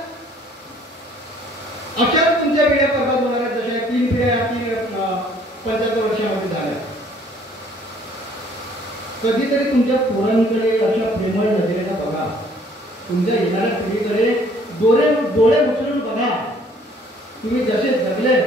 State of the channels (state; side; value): normal; both; correlation 0.59